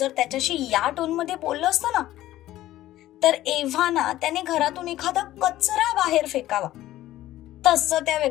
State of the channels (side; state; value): right; quieter; 14.6 dB